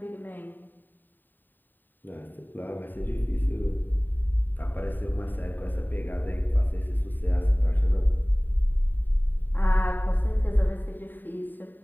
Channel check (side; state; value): right; late; 0.091 ms